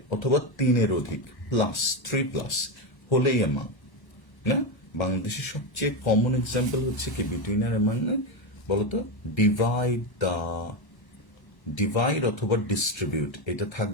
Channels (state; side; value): late; right; 1.1 ms